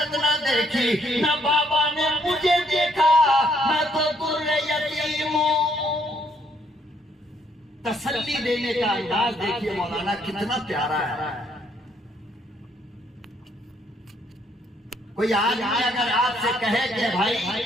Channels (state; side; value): normal; both; correlation 0.69